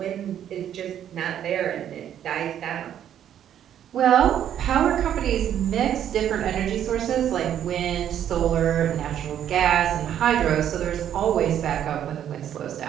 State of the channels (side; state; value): left; quieter; 10.2 dB